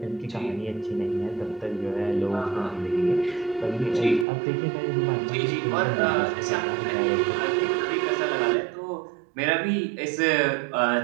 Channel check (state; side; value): drops out; left; at 4.2 s